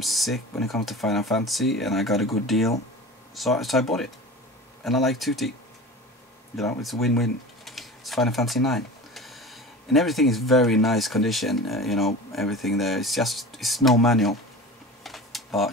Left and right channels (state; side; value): normal; both; correlation 0.34